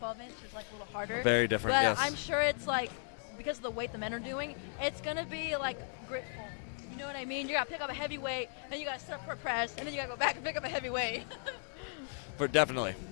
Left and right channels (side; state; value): right; silent; 54 dB below the other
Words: is like a little harder. Very different. But yes. I'm sure it's like because of the weight the men are doing, it's gonna be like gritful. You know what I mean? You gotta pick up a heavy weight, then you gotta sit up for a press, and then you gotta go back and pick up a heavy weight. But definitely.